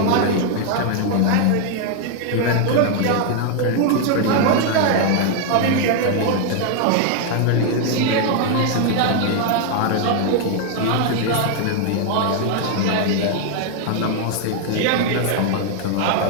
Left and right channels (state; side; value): different; both; correlation 0.00